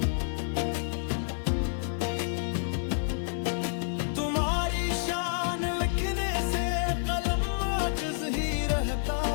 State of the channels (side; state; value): right; silent; 58 dB below the other